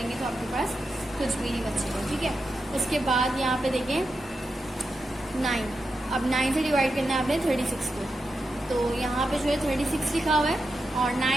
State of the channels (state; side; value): normal; both; correlation 0.88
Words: तो आपके पास कुछ भी नहीं बचेगा, ठीक है। उसके बाद यहाँ पे देखें 9, अब 9 से डिवाइड करना है आपने 36 को, तो यहाँ पे जो है 36 लिखा हुआ है और